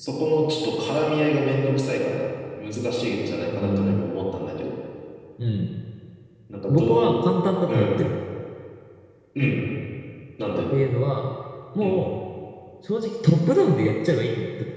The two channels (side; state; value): both; identical; correlation 1.00